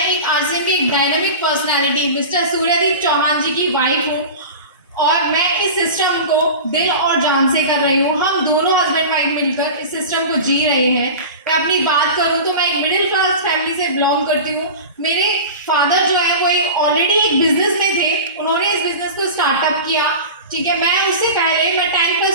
एक आरसीएम की एक dynamic personality mister Suryadeep Chauhan जी की वाइफ हूँ और मैं इस सिस्टम को दिल और जान से कर रही हूँ। हम दोनों हस्बैंड वाइफ मिलकर इस सिस्टम को जी रहे हैं। मैं अपनी बात करूँ तो मैं एक मिडिल क्लास फैमिली से बिलोंग करती हूँ। मेरे फादर जो है वो ऑलरेडी एक बिजनेस में थे, उन्होंने इस बिजनेस को स्टार्टअप किया। ठीक है, मैं उससे पहले मैं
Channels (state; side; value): inverted; both; correlation -0.31